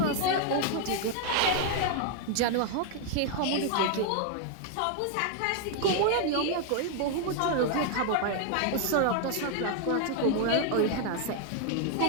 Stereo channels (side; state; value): both; different; correlation 0.00